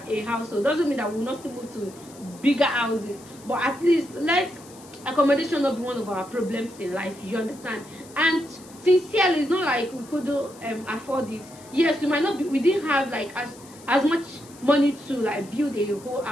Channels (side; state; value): left; noise; hiss, 22 dB below the sound